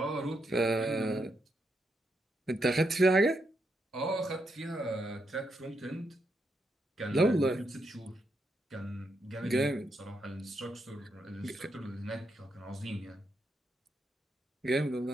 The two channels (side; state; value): both; normal; correlation 0.81